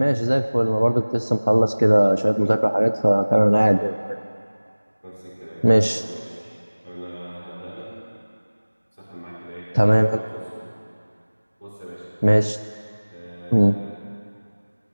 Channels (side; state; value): both; inverted; correlation -1.00